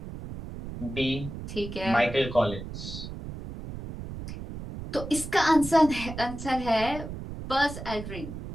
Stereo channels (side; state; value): right; noise; rumble, 9 dB below the sound